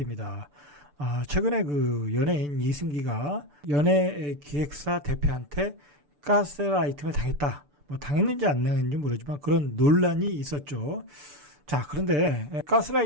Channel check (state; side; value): late; left; 6.9 ms